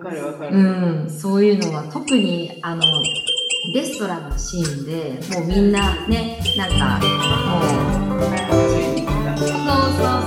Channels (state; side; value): identical; both; correlation 1.00